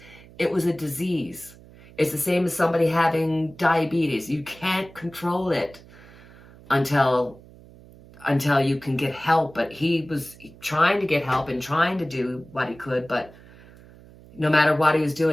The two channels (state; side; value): noise; right; hum, 22 dB below the sound